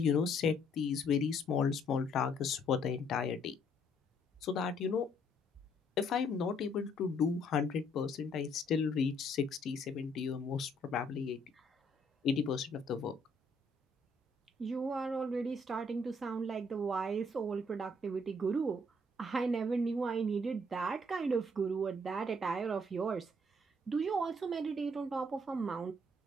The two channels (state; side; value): normal; both; correlation 0.67